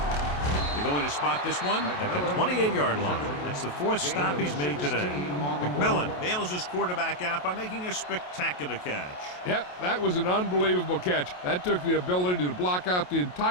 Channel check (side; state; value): right; late; 28 ms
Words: They're going to spot this one at the 28-yard line. That's the 4th stop he's made today. McMillan bails his quarterback out by making a spectacular catch. Yep, that was an unbelievable catch. That took the ability to block out the